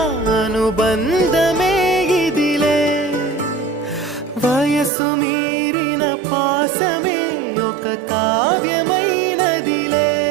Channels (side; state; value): left; drops out; at 4.9 s